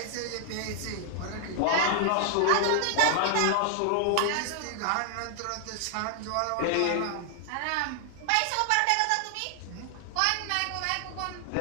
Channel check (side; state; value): both; different; correlation 0.00